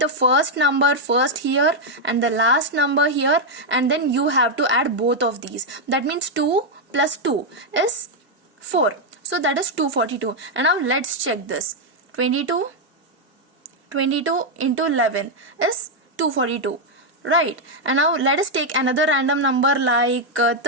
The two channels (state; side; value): normal; both; correlation 0.00